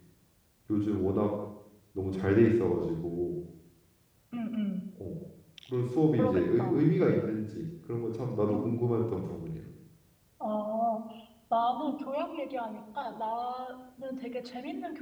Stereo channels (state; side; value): identical; both; correlation 1.00